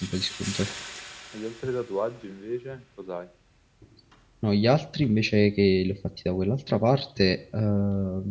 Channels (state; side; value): identical; both; correlation 1.00